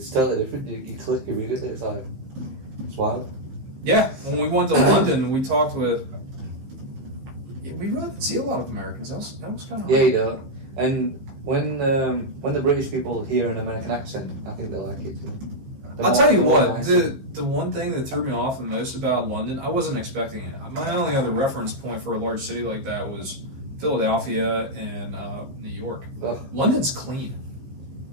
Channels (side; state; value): left; late; 15 ms